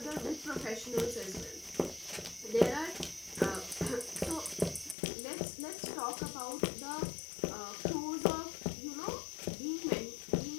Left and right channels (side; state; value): right; drops out; at 5.0 s